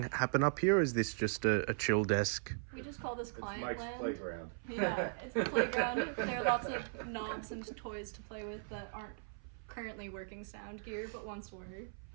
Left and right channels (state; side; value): silent; left; 52 dB below the other